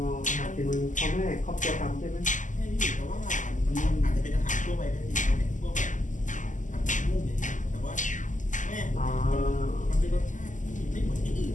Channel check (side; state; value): right; late; 0.37 ms